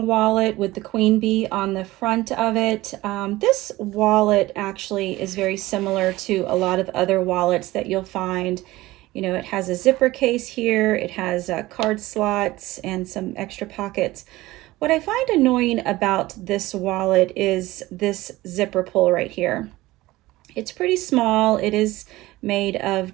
wallet with the queen bee on the front of it. This wallet actually is very similar to a lot of other wallets that you'll find. You know, it has a zipper case here, it has card slots and some extra pockets. What I find annoying about this wallet is this zipper pull right here. It's pretty small. It is made of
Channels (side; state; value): left; quieter; 18.3 dB